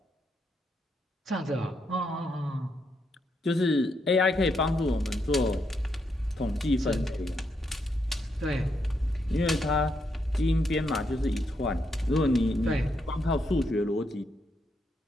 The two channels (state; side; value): normal; both; correlation 0.79